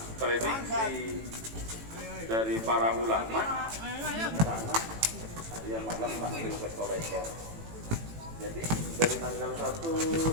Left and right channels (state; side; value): late; left; 18 ms